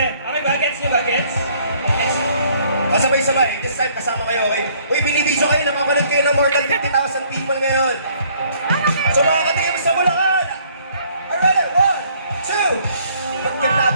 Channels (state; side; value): inverted; both; correlation -0.62